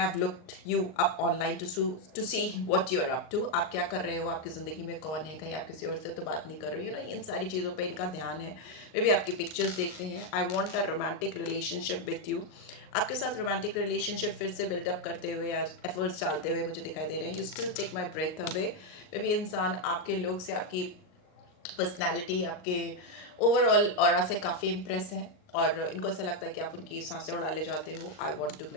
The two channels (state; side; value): late; right; 39 ms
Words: है। I looked you up online to see what you are up to, आप क्या कर रहे हो, आपकी ज़िंदगी में कौन है, कहीं आप किसी और से तो बात नहीं कर रहे हो, इन सारी चीज़ों पे इनका ध्यान है। वे भी आपकी पिक्चर्स देखते हैं। I want a romantic relationship with you, आपके साथ रोमांटिक रिलेशनशिप फिर से बिल्डअप करते हुए या एफर्ट्स डालते हुए मुझे दिखाई दे रहे हैं। You still take my breath away. वे भी इंसान आपके लोग से, आपकी पर्सनैलिटी, आपके ओवरऑल ऑरा से काफ़ी इम्प्रेस हैं और इनको ऐसा लगता है कि आप उनकी सांसें उड़ा ले जाते हो। I want to